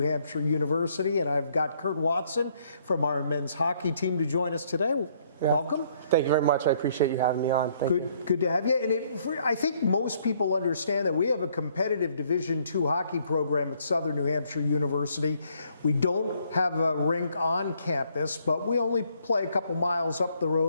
University. And I've got Kurt Watson from our men's hockey team to join us today. Yeah. Welcome. Thank you very much. I appreciate you having me on. Good to have you. And I think most people understand that we have a competitive Division II hockey program at Southern New Hampshire University. We don't have a rink on campus, but we only play a couple miles up the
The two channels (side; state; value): both; inverted; correlation -0.67